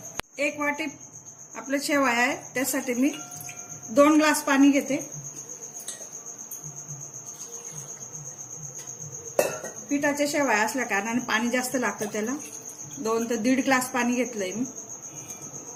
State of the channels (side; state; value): both; identical; correlation 1.00